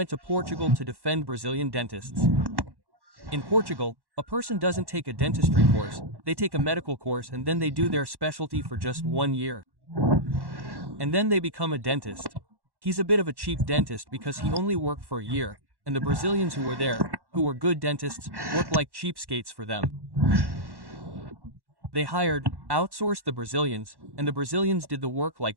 to Portugal to defend Brazilian dentists. In Portugal, a person doesn't take a dentistry course, they take a medical course and then they do their specialty for just 1 year. And then they become a dentist. He's a bit of a cheap dentist because he only worked for a year, and the Brazilians who were there, who were good dentists, worked like cheapskates for them. They outsourced the Brazilians, and the Brazilians did the work like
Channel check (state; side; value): late; left; 1.1 ms